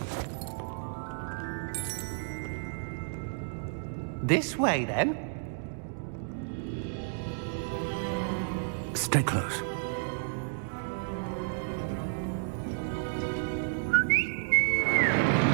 This way, then. Stay close.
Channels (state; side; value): silent; left; digital silence